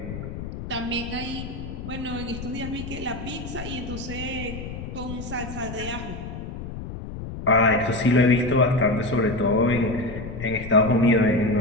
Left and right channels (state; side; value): noise; left; rumble, 9 dB below the sound